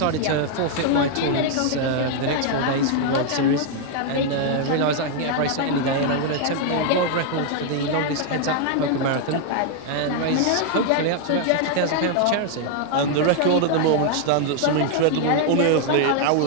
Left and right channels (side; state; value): both; different; correlation 0.00